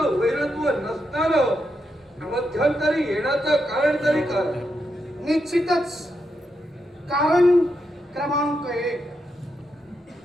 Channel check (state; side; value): normal; both; correlation 0.83